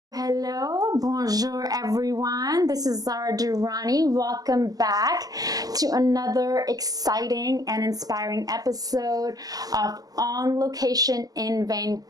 Hello, bonjour everyone. This is Zara Durrani. Welcome back to another exciting and inspiring episode of On Location in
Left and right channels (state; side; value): late; left; 0.18 ms